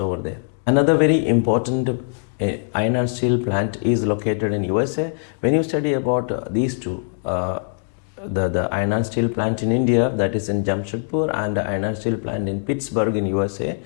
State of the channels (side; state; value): right; silent; digital silence